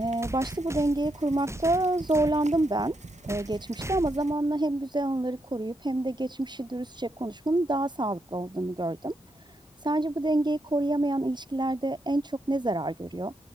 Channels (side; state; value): both; normal; correlation 0.80